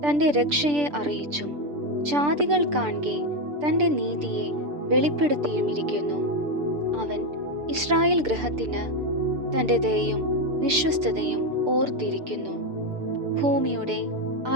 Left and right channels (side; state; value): left; late; 6.8 ms